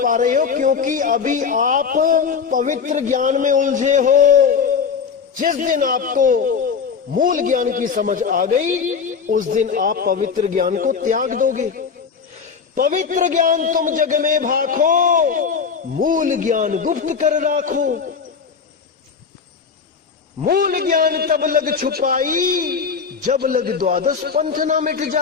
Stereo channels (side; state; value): right; quieter; 6.0 dB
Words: रहे हो क्योंकि अभी आप पवित्र ज्ञान में उलझे हो। जिस दिन आपको मूल ज्ञान की समझ आ गई, उस दिन आप पवित्र ज्ञान को त्याग दोगे। पवित्र ज्ञान तुम जग में भाखो, मूल ज्ञान गुप्त कर राखो। मूल ज्ञान तब लग छुपाई, जब लग द्वादश पंथ ना मिट